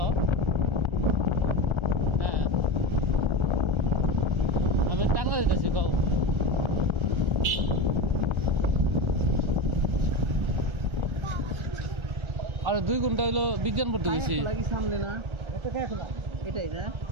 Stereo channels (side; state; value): left; late; 1.3 ms